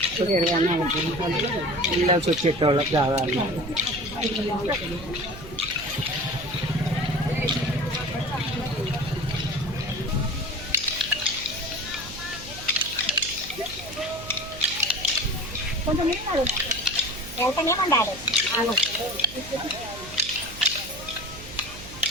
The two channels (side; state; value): right; noise; hum, 15 dB below the sound